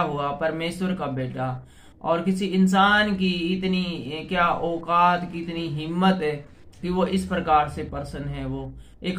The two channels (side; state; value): both; identical; correlation 1.00